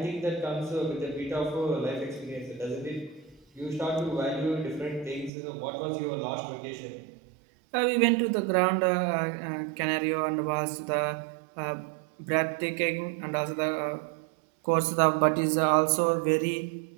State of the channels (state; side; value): drops out; left; at 5.3 s